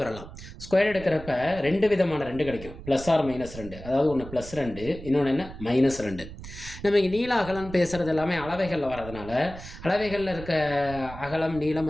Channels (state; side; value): noise; right; rumble, 14 dB below the sound